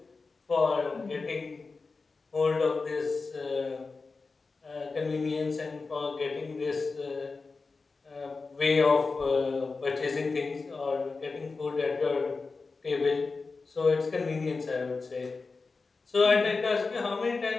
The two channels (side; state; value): right; quieter; 4.1 dB